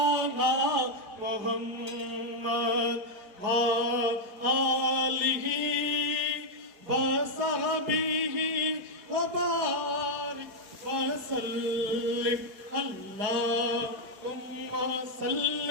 محمد وآله وصحبه وبارك وسلم اللهم صل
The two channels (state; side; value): late; left; 4.9 ms